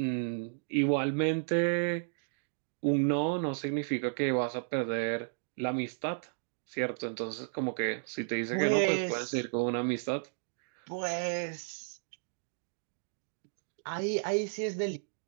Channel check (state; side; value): silent; left; digital silence